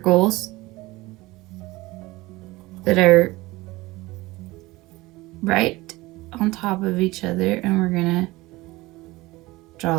that are right on top of each other, and we're going to draw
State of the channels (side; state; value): left; quieter; 20.5 dB